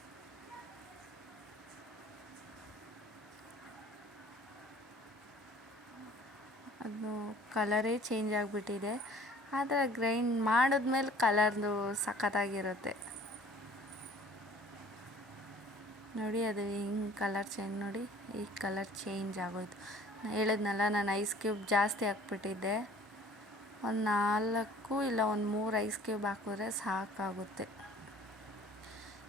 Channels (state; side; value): normal; both; correlation 0.51